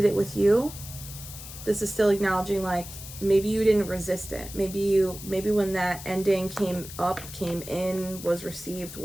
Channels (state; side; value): noise; left; hiss, 13 dB below the sound